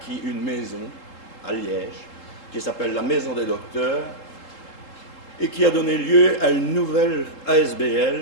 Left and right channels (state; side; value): late; right; 3.7 ms